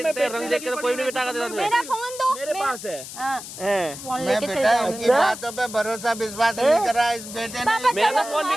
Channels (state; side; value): noise; left; hiss, 12 dB below the sound